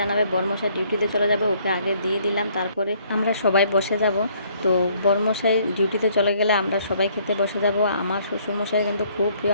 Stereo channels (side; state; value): both; inverted; correlation -0.63